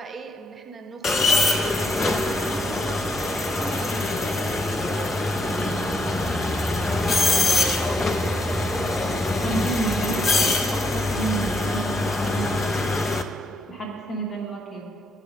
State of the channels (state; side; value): normal; both; correlation 0.76